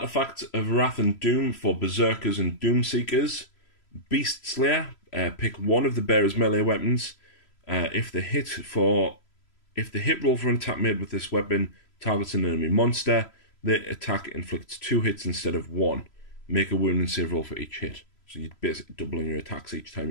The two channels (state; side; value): late; right; 3.0 ms